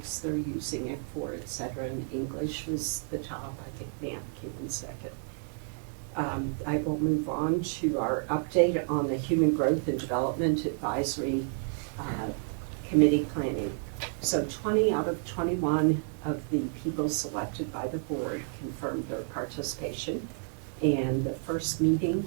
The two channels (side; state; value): left; silent; 57 dB below the other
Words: they're using it for, et cetera, and English was the top. I think math came in second. I will move on to our update on the Human Growth and Development Advisory Committee planning. So 20 out of 21 of the people selected by the board confirmed their participation. And the first meeting